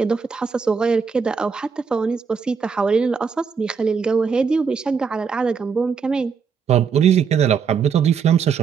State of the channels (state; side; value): quieter; left; 6.1 dB